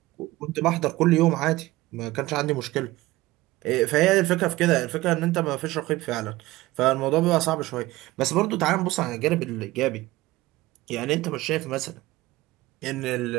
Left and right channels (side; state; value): left; quieter; 18.5 dB